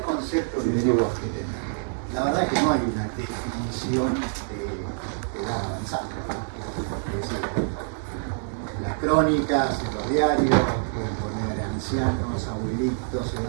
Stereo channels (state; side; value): silent; left; 58 dB below the other